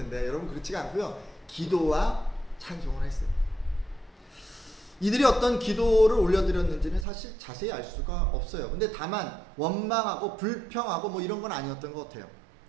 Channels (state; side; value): drops out; left; at 7.1 s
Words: 여러분 그렇지가 않고요. 기도와 찬송을 했어요. 이들이 어떤 기도를 올려드렸는지는 사실 자세히 알 수가 없어요. 근데 다만 원망하고 불평하고 이런 건 아니었던 것 같아요.